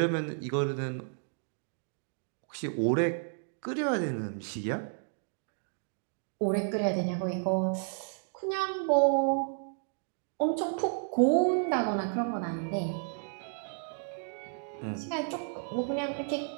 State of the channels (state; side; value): silent; left; 56 dB below the other